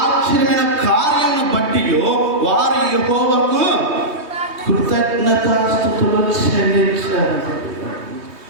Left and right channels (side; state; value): left; late; 3.2 ms